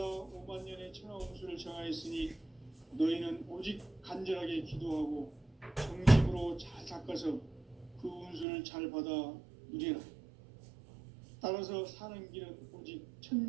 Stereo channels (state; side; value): drops out; left; at 8.5 s